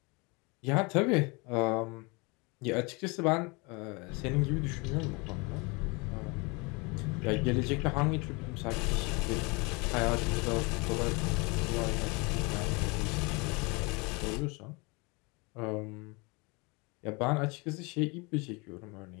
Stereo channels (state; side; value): quieter; right; 28.3 dB